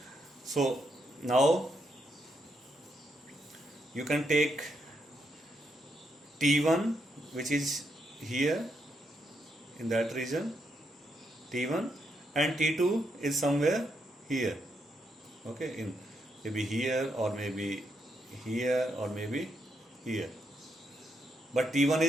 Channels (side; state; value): both; normal; correlation 0.79